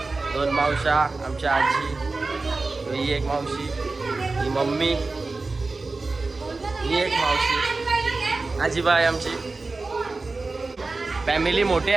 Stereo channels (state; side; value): quieter; left; 3.6 dB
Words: 2 मावशा. आमची आजी. ही एक मावशी. ही मम्मी. ही एक मावशी. आजीबाई आमची. फॅमिली मोठी